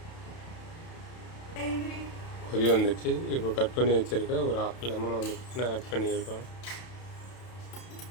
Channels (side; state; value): right; late; 31 ms